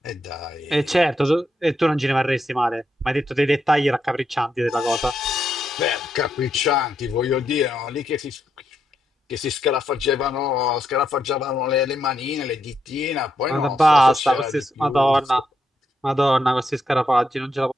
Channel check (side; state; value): both; normal; correlation 0.80